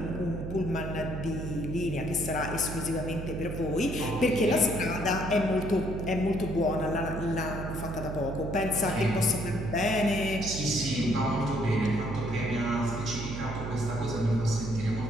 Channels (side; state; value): right; noise; hum, 6 dB below the sound